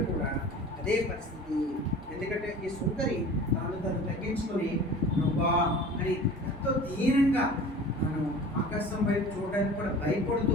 కూడా అదే పరిస్థితి. ఎందుకంటే ఈ సుందరి తను తగ్గించుకొని ప్రభా అని ఎంతో దీనంగా తను ఆకాశం వైపు చూడడానికి కూడా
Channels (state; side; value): normal; both; correlation 0.41